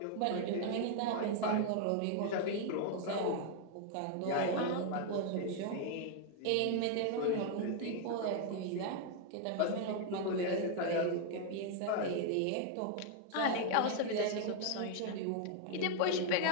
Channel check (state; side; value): different; both; correlation 0.00